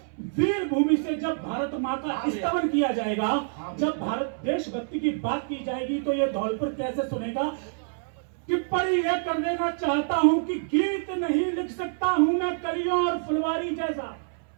वीर भूमि से जब भारत मां का स्तवन किया जाएगा, जब भारत देशभक्ति की बात की जाएगी, तो ये धौलपुर कैसे सुनेगा। टिप्पणी यह कर देना चाहता हूं कि गीत नहीं लिख सकता हूं मैं कलियों और फुलवारी जैसा।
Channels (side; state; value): left; silent; 60 dB below the other